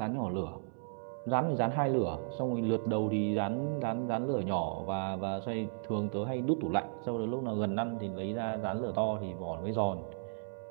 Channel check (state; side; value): silent; left; 55 dB below the other